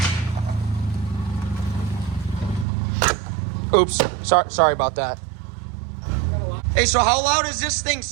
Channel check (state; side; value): drops out; left; at 2.7 s